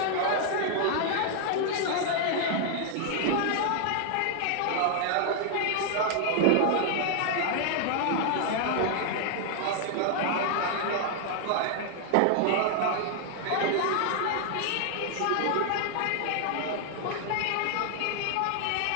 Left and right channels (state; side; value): different; both; correlation 0.00